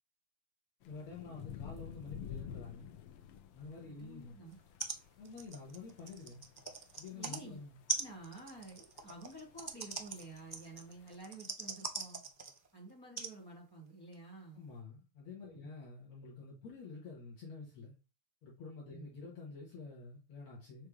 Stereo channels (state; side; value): late; right; 6.7 ms